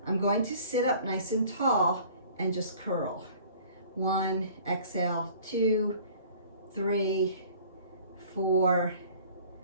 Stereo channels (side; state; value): both; inverted; correlation -0.50